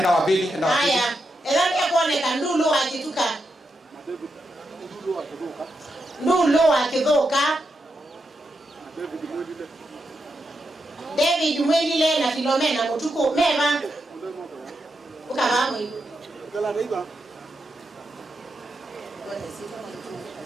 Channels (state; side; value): normal; both; correlation 0.85